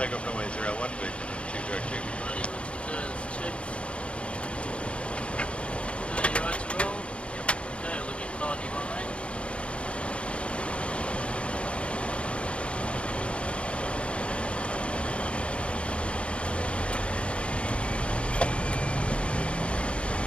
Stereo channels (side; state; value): right; late; 0.060 ms